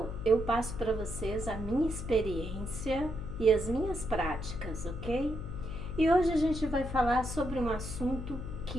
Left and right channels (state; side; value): noise; left; hum, 7 dB below the sound